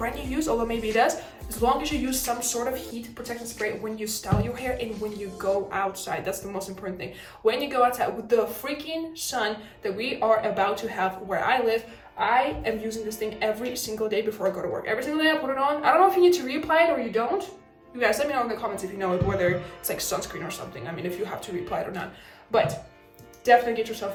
you use, although maybe it does, as long as you use some sort of heat protection spray when you style your hair and when you go outside. That's the most important thing. When you go outside with the freaking sun that we are about to have where I live, I am using this thing every single day before I go to work. Every single day I put it on. I don't know if you need to reapply it or you don't. You guys let me know in the comments if you know whether it's like sunscreen or something. I mean, if you have to reapply it or not. But definitely get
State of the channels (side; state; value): both; identical; correlation 1.00